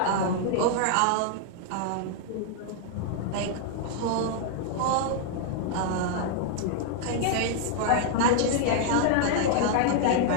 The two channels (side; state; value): both; different; correlation 0.00